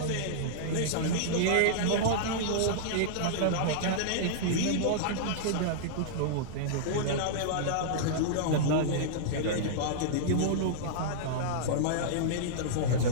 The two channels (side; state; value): both; different; correlation -0.02